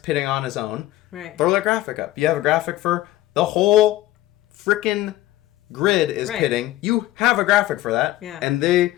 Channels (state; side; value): quieter; right; 15.5 dB